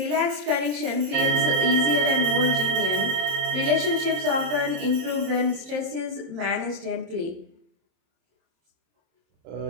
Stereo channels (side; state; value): left; late; 27 ms